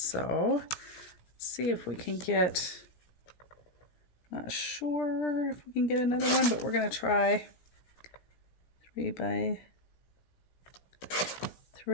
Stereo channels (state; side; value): late; right; 17 ms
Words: Let's see if we can get, not sure if we can get another one, but we're going to try 3 by